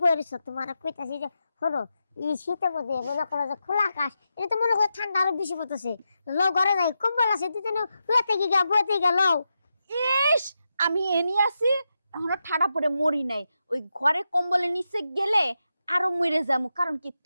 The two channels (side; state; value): both; inverted; correlation -0.88